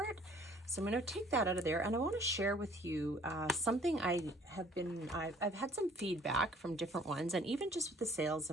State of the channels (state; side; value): normal; both; correlation 0.55